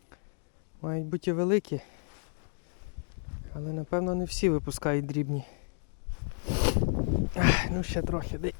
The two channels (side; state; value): right; silent; 57 dB below the other